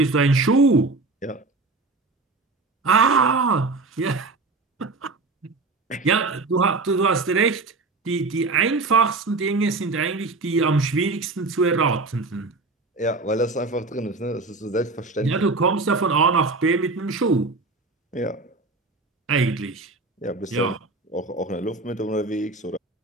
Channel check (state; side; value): quieter; left; 3.5 dB